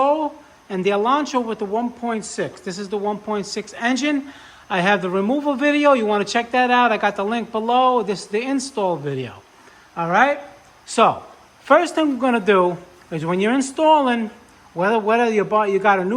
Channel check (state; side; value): identical; both; correlation 1.00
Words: and the Elantra with the 1.6. This is the 1.6 engine. I have the removal video. You want to check that out. I got the link below. This is the install video. All right? So, first thing we're going to do is when you're installing, whether you got a